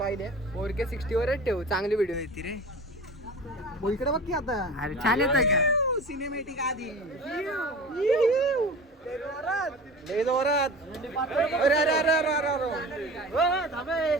पोरके 60 वरच ठेव चांगली व्हिडिओ येते रे. इकडे बघ की आता अरे छान येत का सिनेमॅटिक आधी लय जोरात.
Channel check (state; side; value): normal; both; correlation 0.36